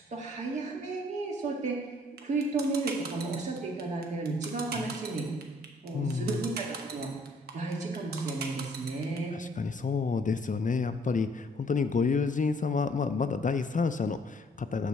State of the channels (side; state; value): both; normal; correlation 0.62